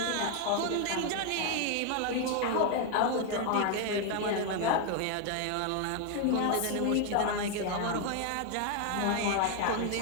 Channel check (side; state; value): both; different; correlation 0.01